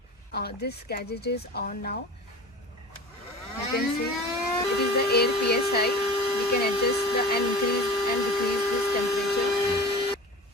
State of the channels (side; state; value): both; normal; correlation 0.36